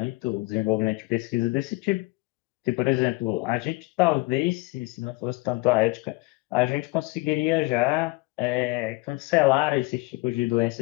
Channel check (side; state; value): right; quieter; 23.5 dB